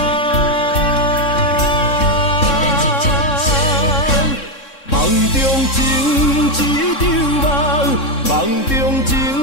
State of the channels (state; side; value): late; right; 3.6 ms